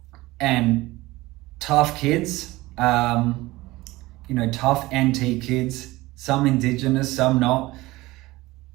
and tough kids, tough NT kids, some Indigenous, some not.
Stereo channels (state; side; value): quieter; left; 19.5 dB